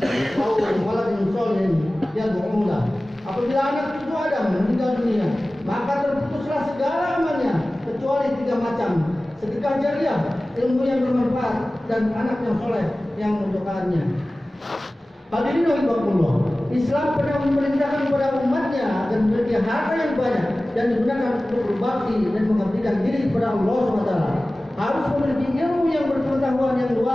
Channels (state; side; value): normal; both; correlation 0.97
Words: aw waladin sholihin yad'u lahu. Apabila anak cucu Adam meninggal dunia, maka terputuslah segala amalnya kecuali 3 macam: sedekah jariah, ilmu yang bermanfaat, dan anak yang soleh yang mendoakannya. Hadirin rahimakumullah, Islam pernah memerintahkan kepada umatnya agar memiliki harta yang banyak dan digunakan untuk berbakti dan mengabdikan diri kepada Allah SWT. Harus memiliki ilmu yang berpengetahuan yang